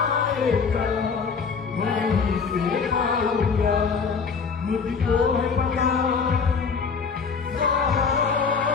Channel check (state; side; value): quieter; right; 5.5 dB